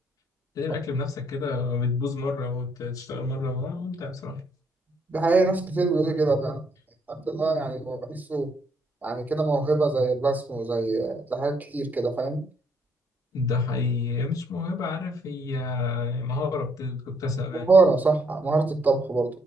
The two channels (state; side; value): normal; both; correlation 0.70